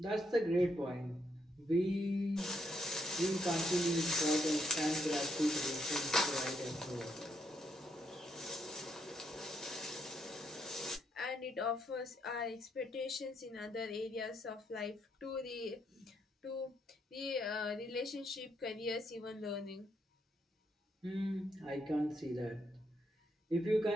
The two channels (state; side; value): normal; both; correlation 0.76